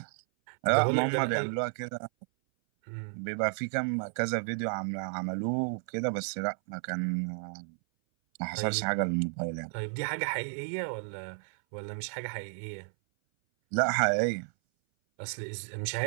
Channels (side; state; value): left; silent; 56 dB below the other